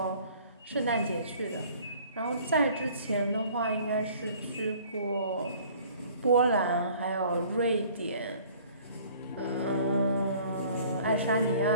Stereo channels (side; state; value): both; inverted; correlation -0.52